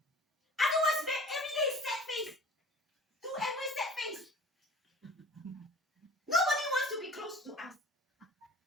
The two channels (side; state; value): both; normal; correlation 0.45